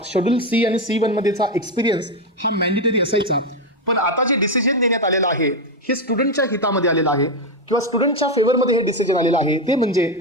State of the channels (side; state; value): both; normal; correlation 0.09